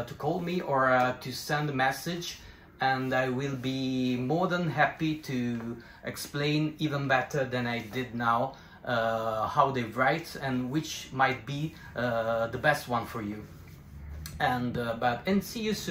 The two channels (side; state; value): both; identical; correlation 1.00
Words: call me or to send a message, and I will be more than happy to explain even better than I did now how they write and which might be the best one for you. And see you